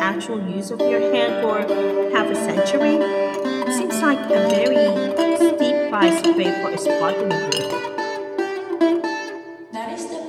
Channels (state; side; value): identical; both; correlation 1.00